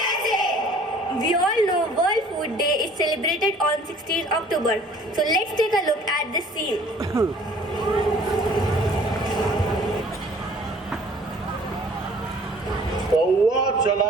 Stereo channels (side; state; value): both; normal; correlation 0.53